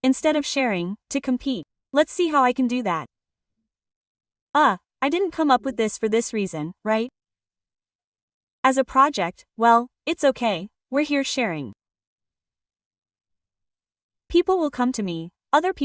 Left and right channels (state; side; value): identical; both; correlation 1.00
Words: Instead of sharing, to compete. Let's see how I can do that. I didn't come up with this for this reason, right? As a project, well, it's okay, we're here sharing. People will come to me, other